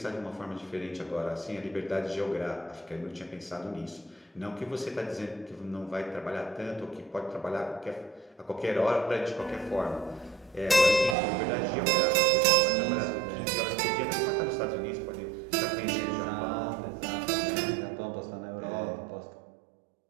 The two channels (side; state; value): left; drops out; at 11.2 s